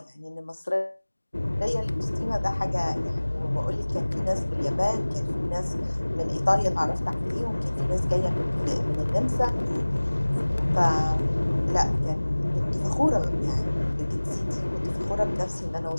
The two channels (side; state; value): both; inverted; correlation -1.00